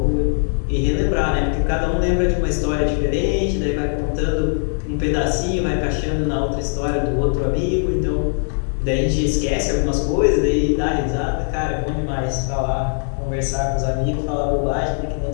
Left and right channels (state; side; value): silent; right; 57 dB below the other